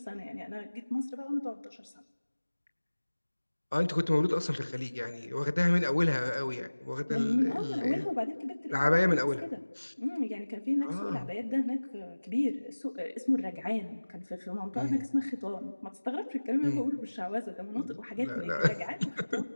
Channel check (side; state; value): both; inverted; correlation -1.00